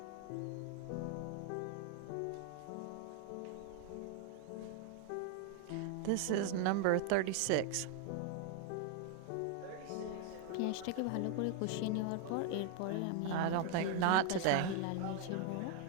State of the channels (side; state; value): both; different; correlation 0.00